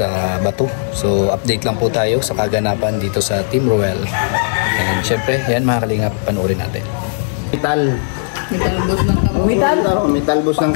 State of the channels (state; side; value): silent; right; digital silence